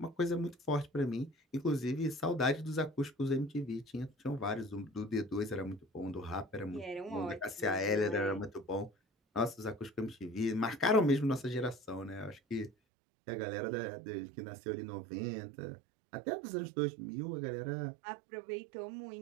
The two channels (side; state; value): left; drops out; at 12.7 s